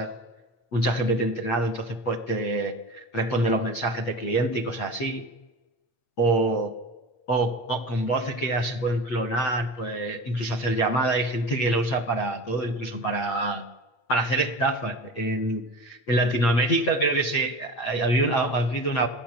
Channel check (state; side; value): late; right; 8.6 ms